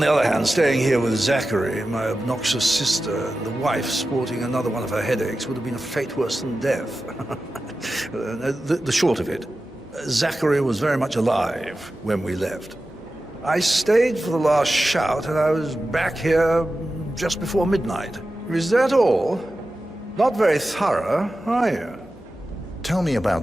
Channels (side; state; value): both; normal; correlation 0.93